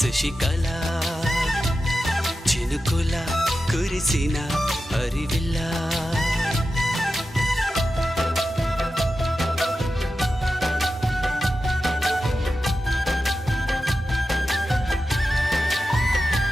చినుకుల కురిసిన హరివిల్ల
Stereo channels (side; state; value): both; normal; correlation 0.91